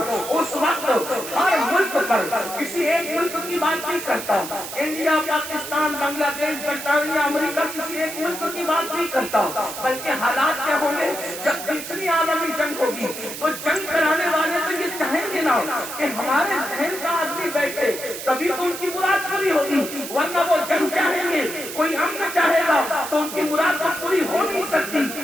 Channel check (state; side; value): noise; right; hiss, 9 dB below the sound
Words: اس وقت ہر ملک پر کسی ایک ملک کی بات نہیں کرتا، انڈیا، پاکستان، بنگلہ دیش، برطانیہ، امریکہ، کسی ایک ملک کی بات نہیں کرتا، بلکہ حالات کیا ہوں گے جب تیسری عالمی جنگ ہوگی تو جنگ کرانے والے تو یہ چاہیں گے نا کہ ہمارے ذہن کا آدمی بیٹھے، تبھی تو ان کی مراد پوری ہوگی، ورنہ وہ جنگ چاہیں گے، کوئی امن چاہے گا تو ان کی مراد تو پوری ہو نہیں سکتی۔